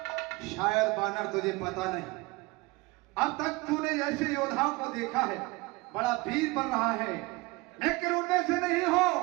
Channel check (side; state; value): left; quieter; 23.1 dB